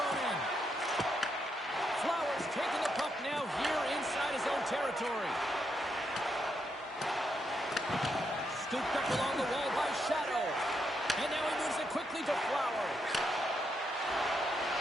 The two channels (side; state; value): both; normal; correlation 0.80